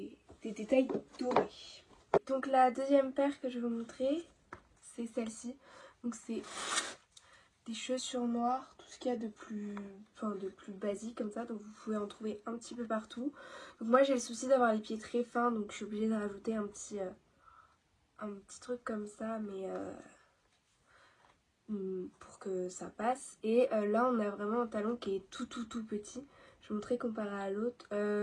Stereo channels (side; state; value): both; identical; correlation 1.00